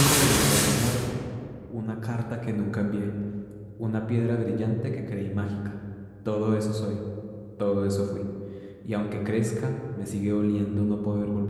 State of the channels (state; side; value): identical; both; correlation 1.00